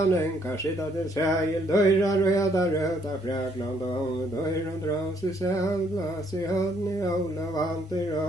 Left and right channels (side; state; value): both; normal; correlation 0.68